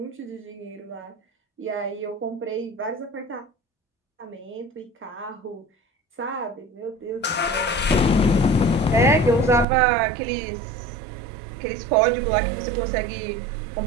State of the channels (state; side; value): drops out; left; at 9.7 s